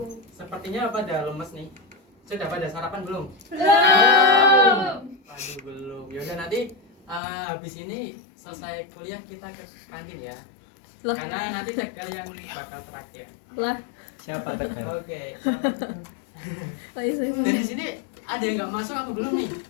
Sepertinya pada lemes nih. Sudah pada sarapan belum? Belum. Aduh, belum. Yaudah nanti habis ini selesai kuliah kita ke kantin ya. Loh. Karena nanti tegal yang bakal terakhir. Lah, Siapa tegar? Oke. saya Dari sini ada yang nggak masuk apa belum nih?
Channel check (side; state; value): right; drops out; at 7.2 s